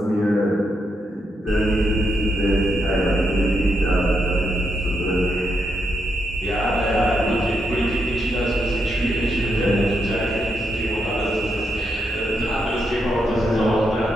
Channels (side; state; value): both; normal; correlation 0.82